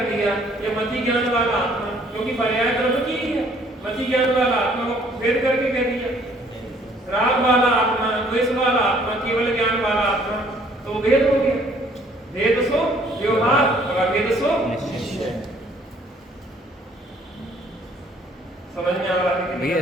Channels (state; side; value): normal; both; correlation 0.60